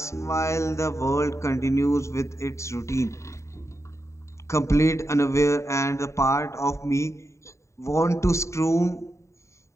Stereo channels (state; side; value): late; right; 0.14 ms